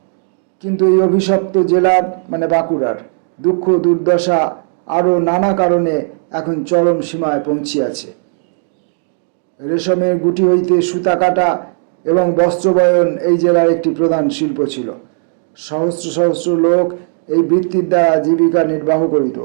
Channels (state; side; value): silent; left; digital silence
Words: কিন্তু এই অভিশপ্ত জেলার মানে বাঁকুড়ার দুঃখ দুর্দশা আরও নানা কারণে এখন চরম সীমায় পৌঁছিয়াছে। রেশমের গুটি হইতে সুতা কাটা এবং বস্ত্রবয়ন এই জেলার একটি প্রধান শিল্প ছিল। সহস্র সহস্র লোক এই বৃত্তির দ্বারা জীবিকা নির্বাহ করিত।